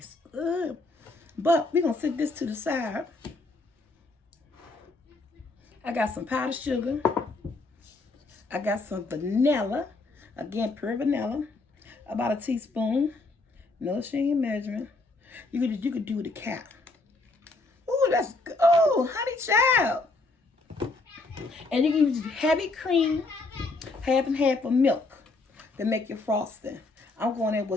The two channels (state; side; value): quieter; right; 3.3 dB